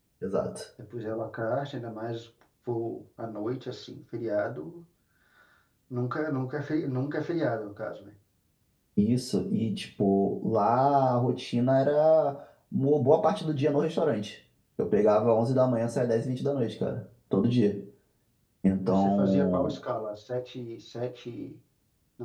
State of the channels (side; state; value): both; identical; correlation 1.00